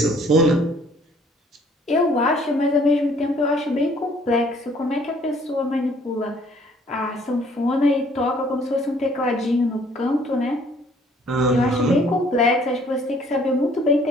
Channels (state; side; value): normal; both; correlation 0.60